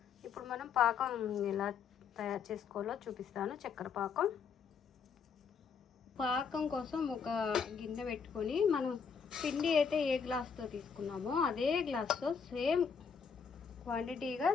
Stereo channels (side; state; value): right; quieter; 6.2 dB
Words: ఇప్పుడు మనం పాకం ఎలా తయారు చేసుకోవాలో చూపిస్తాను. చక్కెర పాకం కోసం ఒక గిన్నె పెట్టుకొని మనం పిండి అయితే ఏ గ్లాస్తో తీసుకున్నామో అదే గ్లాస్తో సేమ్ క్వాంటిటీగా